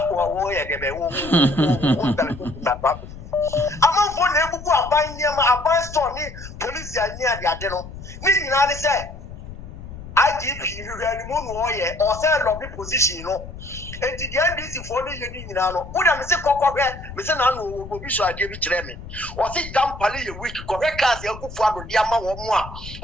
wo ye de be wo amon na ebubu aban nyema aban store ni police ya nya de ade no ni nyina ni say IGP hwehwani mu no ye o say lobby position no enti the NDC for no yeni nyina no wo da me se kokkohwe me se na no obi so ade bi kire me o se dampale ye week kokkohwe cars yakufu ado de ama wo mu a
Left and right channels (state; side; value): noise; left; rumble, 13 dB below the sound